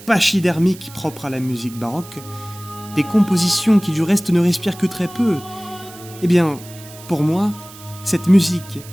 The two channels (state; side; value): noise; right; hiss, 19 dB below the sound